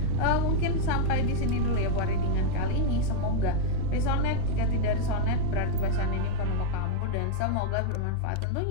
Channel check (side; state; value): both; different; correlation 0.01